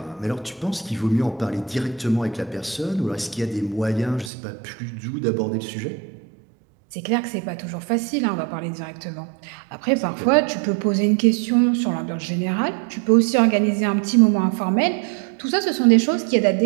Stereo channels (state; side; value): drops out; left; at 4.3 s